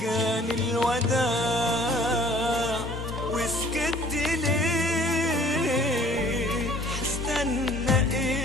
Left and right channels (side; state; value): both; normal; correlation 0.54